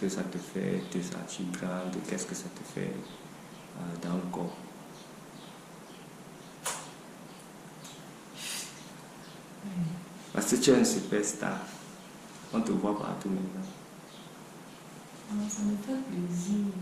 ça te fait te sentir grande? Qu'est-ce que ça te fait dans le corps? Parce que tu es un superstar. On te voit partout maintenant. Ça me fait plaisir.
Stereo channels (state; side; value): identical; both; correlation 1.00